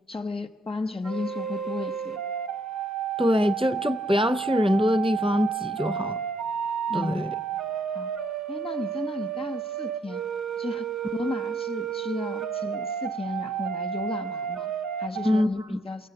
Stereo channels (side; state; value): both; normal; correlation 0.70